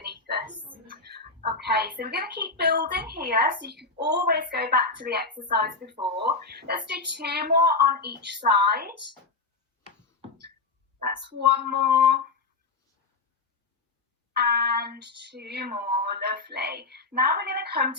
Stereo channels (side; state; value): right; quieter; 4.0 dB